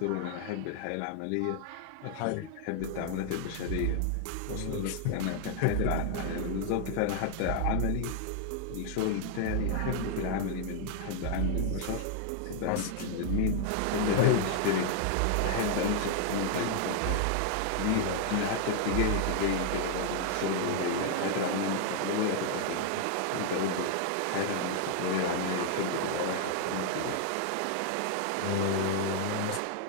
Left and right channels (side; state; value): both; different; correlation 0.00